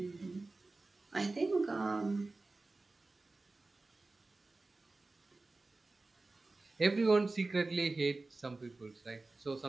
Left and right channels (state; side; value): quieter; left; 3.3 dB